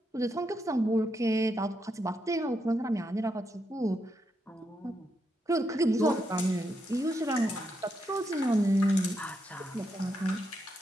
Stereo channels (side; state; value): both; normal; correlation 0.82